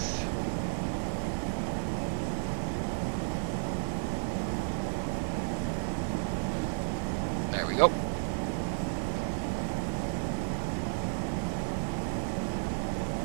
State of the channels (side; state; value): left; silent; 56 dB below the other